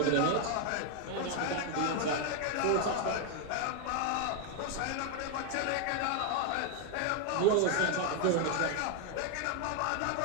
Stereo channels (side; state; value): both; different; correlation 0.01